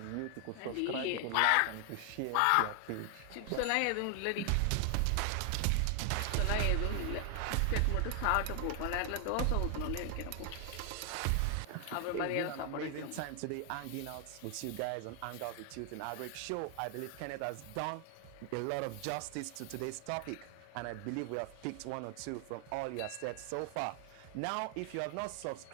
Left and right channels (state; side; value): different; both; correlation 0.00